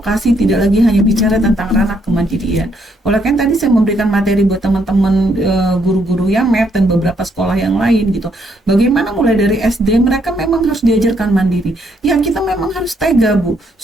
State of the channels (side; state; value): both; normal; correlation 0.72